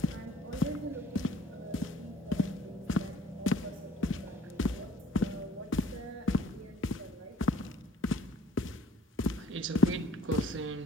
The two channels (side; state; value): both; normal; correlation 0.55